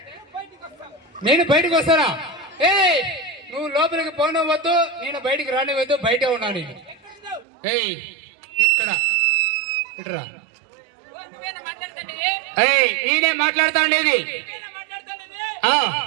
నేను బయటకు వస్తానా? ఏ నువ్వు లోపలికి పోనవద్దు, నేను బయటికి రానివద్దు, బయటే ఉన్నా నేను. ఏయ్ ఇక్కడ ఇట్రా. ఏయ్ నేనే మాట్లాడుతా ఉండేది.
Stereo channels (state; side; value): drops out; left; at 7.5 s